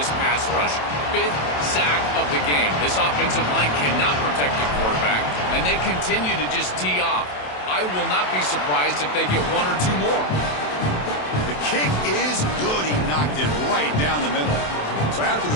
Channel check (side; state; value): right; late; 27 ms